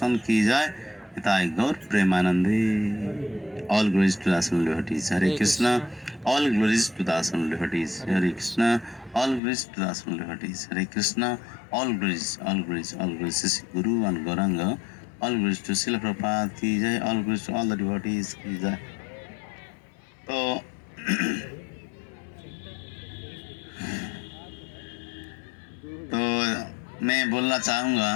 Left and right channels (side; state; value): right; drops out; at 9.4 s